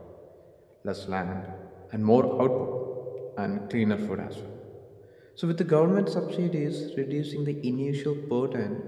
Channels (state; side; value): identical; both; correlation 1.00